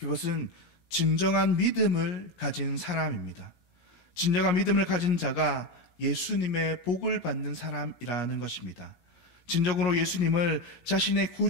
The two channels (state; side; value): late; right; 17 ms